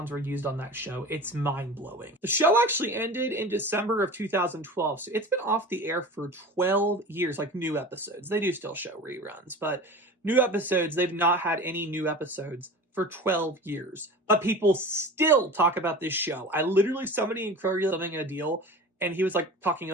were used on that show. It's mind-blowing. The show actually ended in December of 2012, so it's been off the air for 12 years, like new episodes. They do still show reruns, but new episodes, they've not had any new episodes for 12 years. But people still talk about this show. I literally, somebody in Kroger selling a deal, and he was talking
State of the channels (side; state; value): both; normal; correlation 0.35